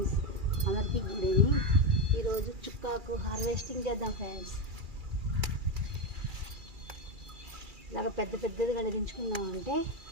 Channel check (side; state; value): left; late; 2.4 ms